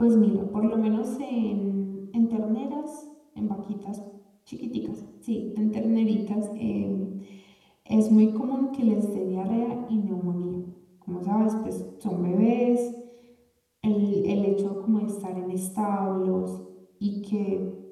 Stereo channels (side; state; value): both; identical; correlation 1.00